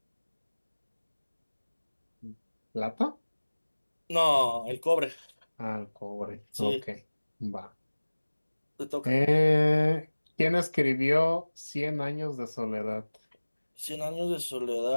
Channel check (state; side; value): inverted; both; correlation -1.00